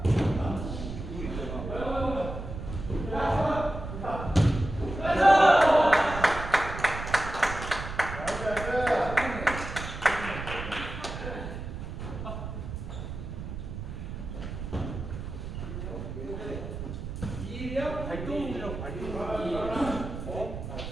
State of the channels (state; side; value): noise; right; rumble, 7 dB below the sound